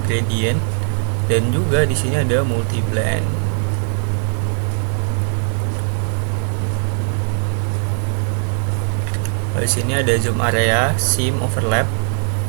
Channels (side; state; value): left; silent; digital silence